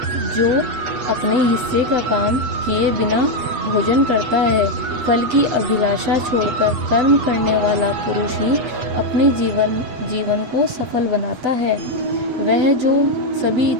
जो अपने हिस्से का काम किए बिना भोजन करता है। फल की अभिलाषा छोड़कर कर्म करने वाला पुरुष ही अपने जीवन को सफल बनाता है। वह जो सभी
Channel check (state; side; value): late; left; 8.3 ms